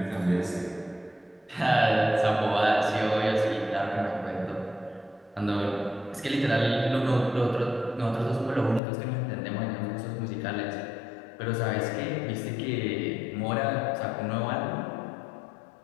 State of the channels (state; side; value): drops out; right; at 8.8 s